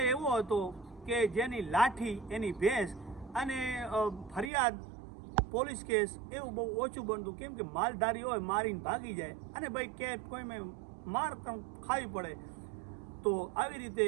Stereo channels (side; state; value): left; drops out; at 4.5 s